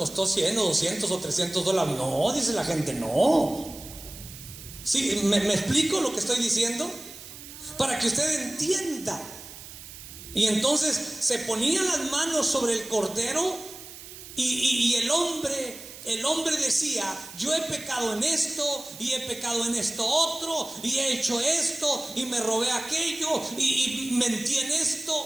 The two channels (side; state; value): right; noise; hiss, 15 dB below the sound